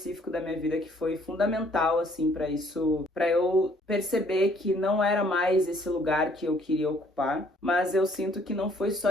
da minha vida que foi fundamental, assim, para eu perceber que não era mais esse lugar que eu queria ocupar. Mas eu sinto que não foi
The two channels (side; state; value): both; normal; correlation 0.62